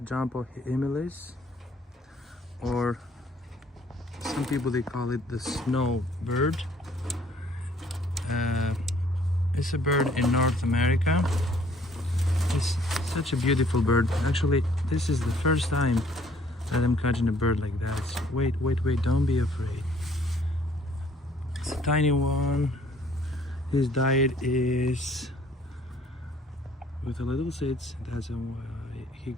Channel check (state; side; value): normal; both; correlation 0.61